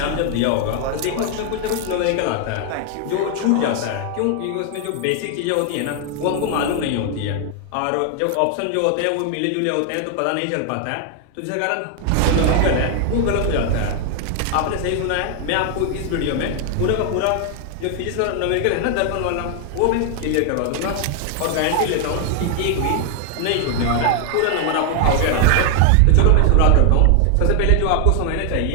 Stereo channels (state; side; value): different; both; correlation 0.00